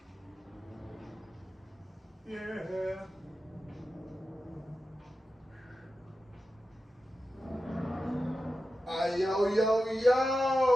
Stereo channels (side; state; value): both; normal; correlation 0.92